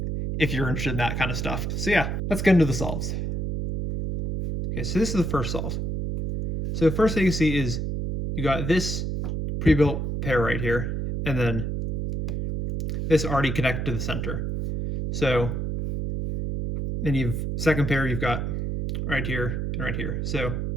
if you're interested in that kind of stuff. So yeah, let's get into the solves. Okay, so this is the first solve. So the first thing you see is you got this pre-built pair right here, and then this already connected to the center. So then you've second pair you've got right here and right here. So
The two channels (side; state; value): right; noise; hum, 2 dB below the sound